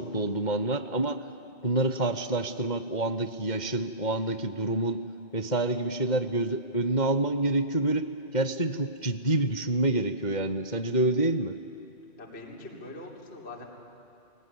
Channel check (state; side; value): late; right; 2.1 ms